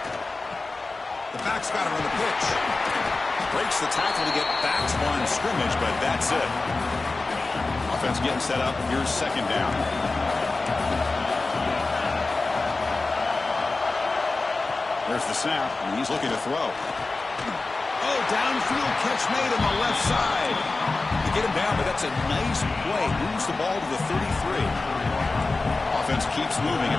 The back's got it on the pitch. Breaks the tackle to get back to line of scrimmage, but that's it. Offense getting set up. Here's second down. There's the snap, and he's looking to throw. Oh, downfield catch made on the left side. They get him down, but that's a nice play. Moves the ball to the 33. Offense keeps moving.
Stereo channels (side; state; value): right; quieter; 3.5 dB